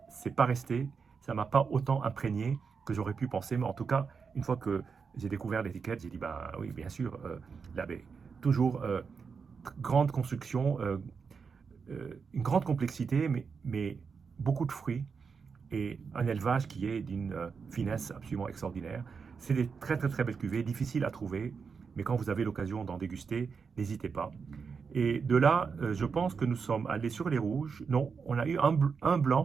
c'est pas resté, ça m'a pas autant imprégné que j'aurais pu penser. Mais en tout cas, une fois que j'ai découvert l'étiquette, j'ai dit, bah oui, bien sûr, la baie. Toujours grande construction, une grande complexité, mais beaucoup de fruits et un élevage qui est d'une finesse absolument extraordinaire. C'est des très très très belles cuvées, difficiles à trouver, mais quand vous avez l'occasion d'en déguster, n'hésitez pas. Et de là, je pense que nous sommes allés sur les rouges. Non, on a eu un blanc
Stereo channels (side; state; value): left; quieter; 5.6 dB